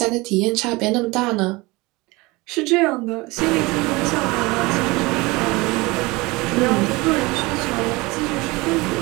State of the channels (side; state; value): left; quieter; 23.3 dB